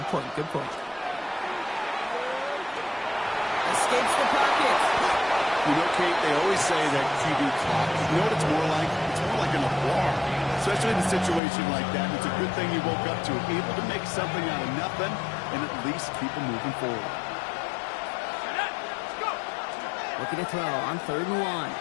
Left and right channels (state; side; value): drops out; right; at 11.4 s